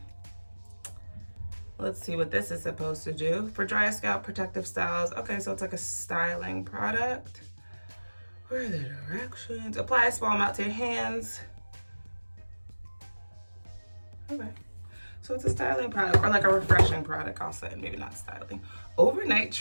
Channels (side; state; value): both; inverted; correlation -1.00